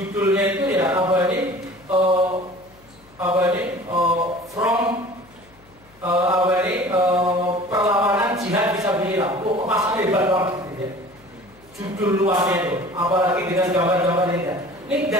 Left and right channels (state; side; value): noise; left; hum, 29 dB below the sound